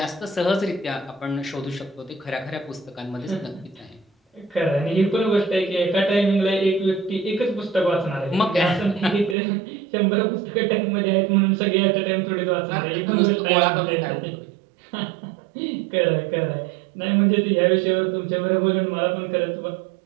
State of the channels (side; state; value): left; drops out; at 9.3 s